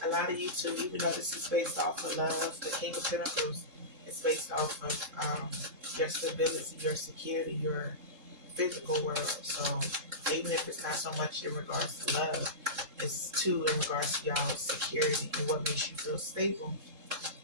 A lot of you too, even though this is based off of love, the King of Pentacles is based off of your stability, your security, your physical world. So even if it's not so much in regards to love, it's too in regards to y'all's security and what makes you feel stable.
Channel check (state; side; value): late; left; 3.7 ms